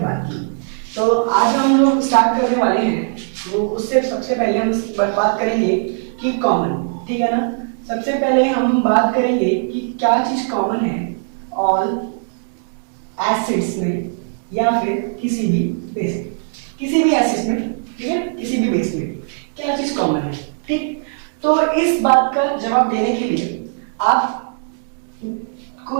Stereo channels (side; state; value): left; silent; 66 dB below the other